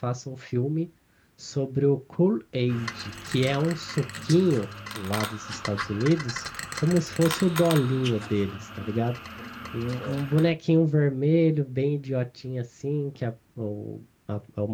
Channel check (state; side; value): identical; both; correlation 1.00